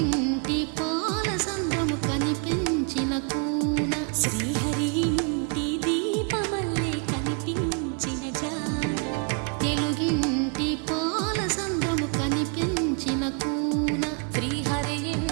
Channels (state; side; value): quieter; left; 38.9 dB